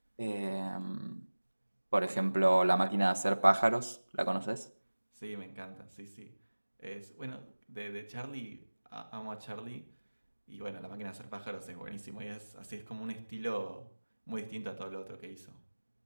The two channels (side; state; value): both; inverted; correlation -1.00